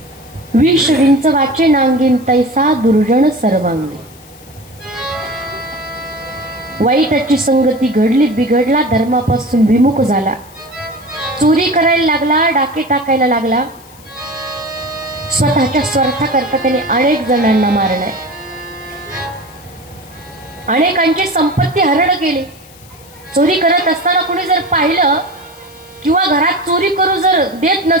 विष विंच वाचे नांगीन तैसा दुर्जन सर्वांगी वाईटाची संगती घडली बिघडला धर्मापासून विमुख झाला चोरी करायला लागला डाके टाकायला लागला स्वतःच्या स्वार्थाकरता त्याने अनेक जणांना मारलाय अनेकांची संपत्ती हरण केली चोरी करत असताना कोणी जर पाहिलं किंवा घरात चोरी करू जर देत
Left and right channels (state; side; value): noise; left; hiss, 24 dB below the sound